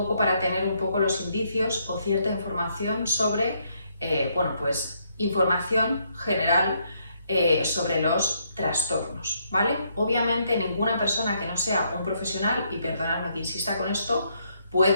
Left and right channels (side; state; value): both; inverted; correlation -0.73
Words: para tener un poco los indicios o cierta información sobre, información general sobre los trastornos, ¿vale? Obviamente ninguna persona que no sea un profesional, y perdonadme que insista con esto,